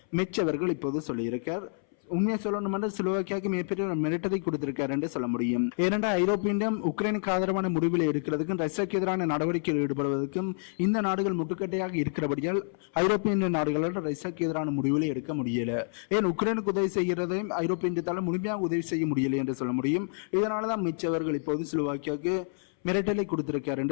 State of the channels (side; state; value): right; silent; 58 dB below the other